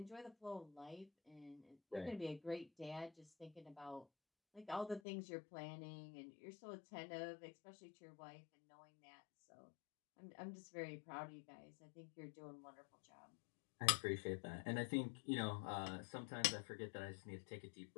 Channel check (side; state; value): right; drops out; at 5.0 s